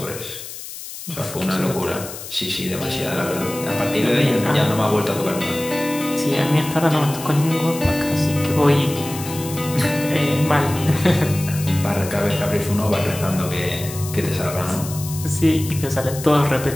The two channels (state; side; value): noise; left; hiss, 11 dB below the sound